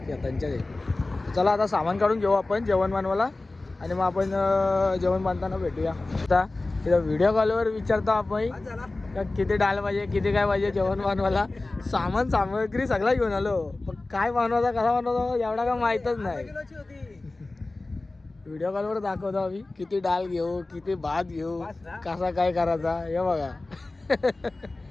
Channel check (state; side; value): quieter; right; 3.1 dB